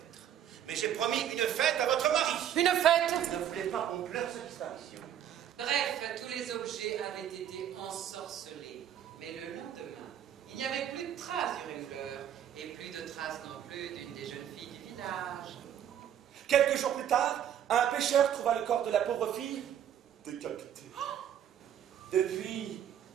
Mais j'ai promis une fête à votre mari. Une fête? Ne voulez pas qu'on pleure sa disparition. Bref, tous les objets avaient été ensorcelés. Mais le lendemain, il n'y avait plus de traces du Ringler. Et plus de traces non plus d'une des jeunes filles du village. Quelques jours plus tard, un pêcheur trouva le corps de la pauvre fille décapitée. Depuis,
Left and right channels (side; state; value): left; quieter; 10.0 dB